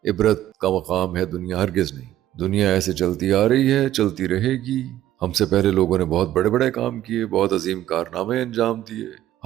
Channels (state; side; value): quieter; left; 13.1 dB